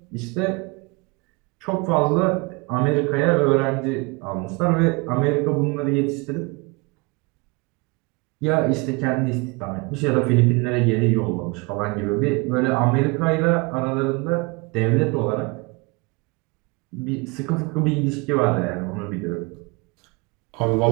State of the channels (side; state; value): left; quieter; 27.7 dB